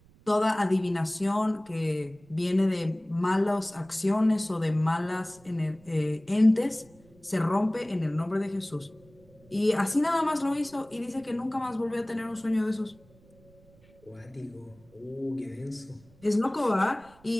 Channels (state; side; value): noise; right; rumble, 28 dB below the sound